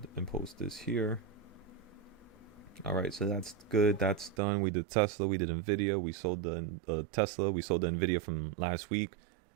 and post this here. Alright, so that's good. That's done. We did Tesla. We did NVIDIA. We sold the Tesla. We sold the NVIDIA from last week.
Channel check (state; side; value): drops out; left; at 4.4 s